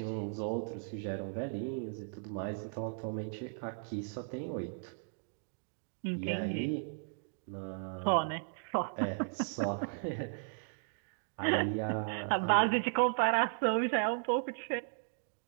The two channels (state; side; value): silent; left; digital silence